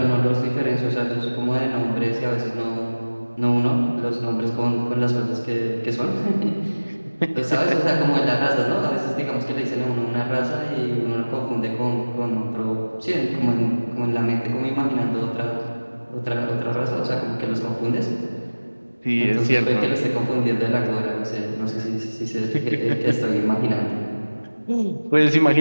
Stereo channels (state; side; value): inverted; both; correlation -1.00